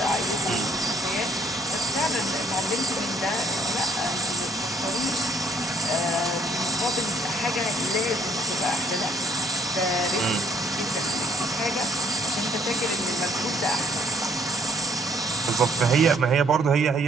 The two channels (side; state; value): both; normal; correlation 0.64